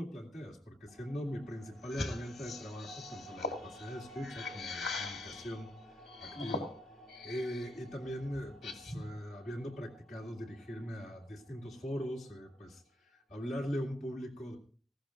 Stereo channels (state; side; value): normal; both; correlation 0.78